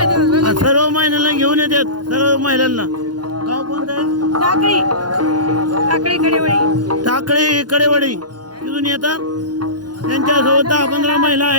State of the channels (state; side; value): late; left; 0.70 ms